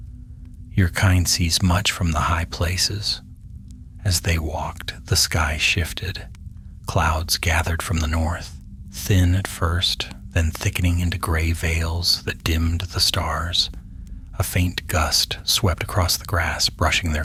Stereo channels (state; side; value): identical; both; correlation 1.00